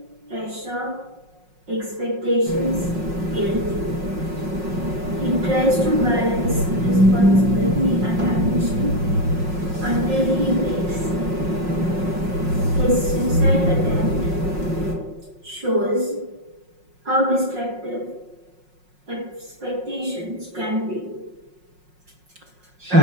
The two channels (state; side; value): late; left; 5.5 ms